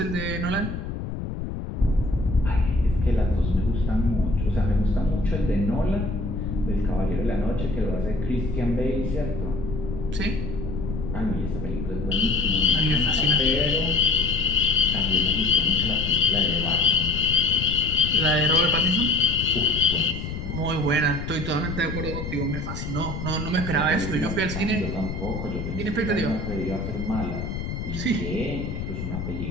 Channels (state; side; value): noise; left; rumble, 6 dB below the sound